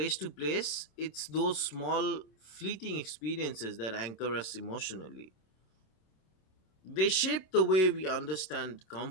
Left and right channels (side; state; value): right; late; 27 ms